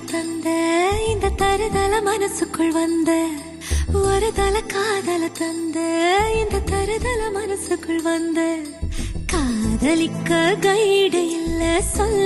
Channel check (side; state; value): both; identical; correlation 1.00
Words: தந்த இந்த தருதல மனசுக்குள் வந்த ஒரு தல காதல தந்த இந்த தருதல மனசுக்குள் வந்த காதலிக்க கைடு இல்ல